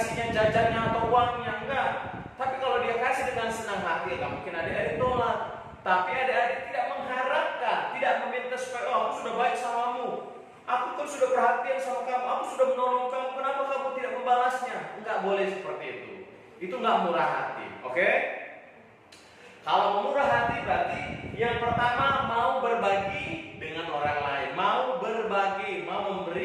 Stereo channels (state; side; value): identical; both; correlation 1.00